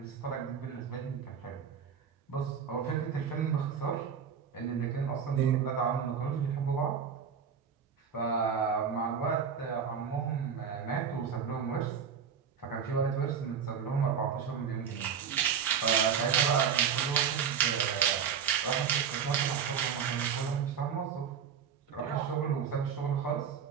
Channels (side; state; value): left; quieter; 7.3 dB